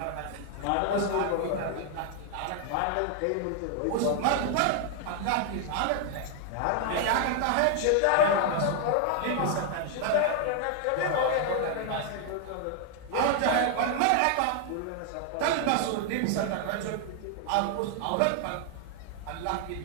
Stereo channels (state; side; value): different; both; correlation 0.00